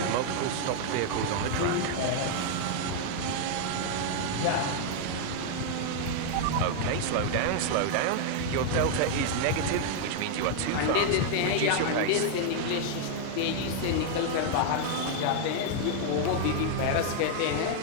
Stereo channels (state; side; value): different; both; correlation 0.00